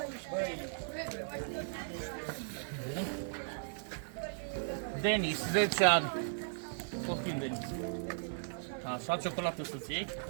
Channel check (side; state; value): left; silent; 53 dB below the other